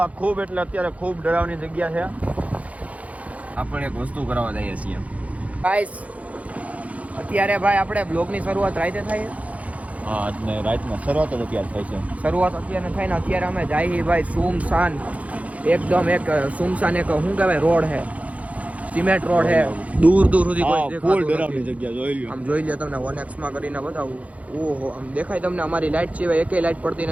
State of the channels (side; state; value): left; late; 0.067 ms